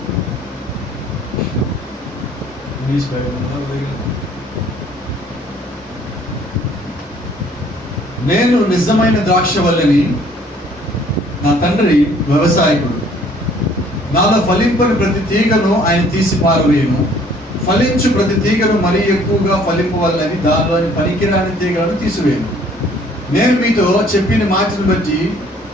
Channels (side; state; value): both; normal; correlation 0.58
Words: నేను నిజమైన ద్రాక్షవల్లిని, నా తండ్రి వ్యవసాయకుడు. నాలో ఫలింపని ప్రతి తీగను ఆయన తీసి పారవేయును, ఫలించు ప్రతి తీగను మరీ ఎక్కువగా ఫలింపవల్లని దానిలోని పనికిరాని తీగలను తీసివేయను. నేను మీతో చెప్పిన మాటను బట్టి